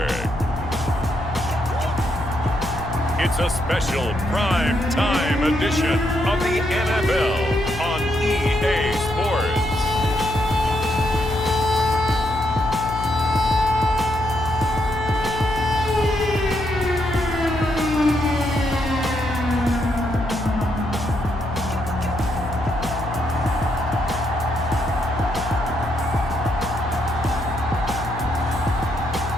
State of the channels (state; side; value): noise; left; hum, 9 dB below the sound